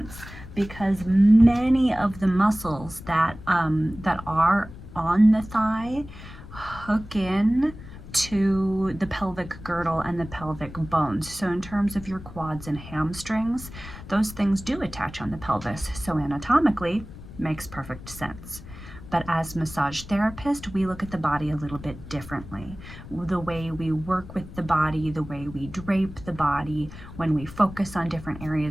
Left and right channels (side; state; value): left; noise; rumble, 15 dB below the sound